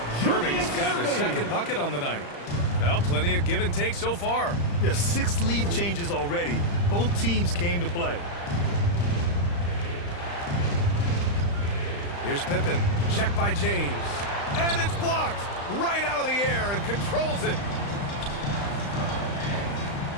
Irving's got his second bucket on the night. Well, plenty of give and take so far. There's 6 lead changes already. Both teams came to play. Here's Pippen. Check by James. And it's blocked right out of the air and controls it.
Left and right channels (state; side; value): late; right; 35 ms